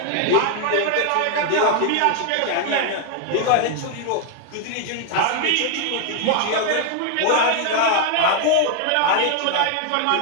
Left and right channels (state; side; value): different; both; correlation 0.01